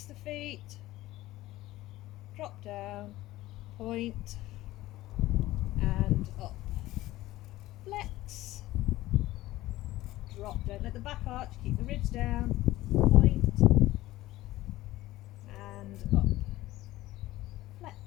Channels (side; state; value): right; quieter; 16.7 dB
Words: the feet, drop down, point, and up. Flex, drop, don't let the back arch, keep the ribs down, point, and up. Flex,